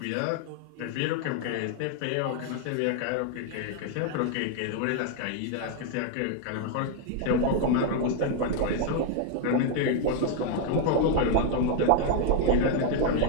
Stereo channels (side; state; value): both; different; correlation 0.00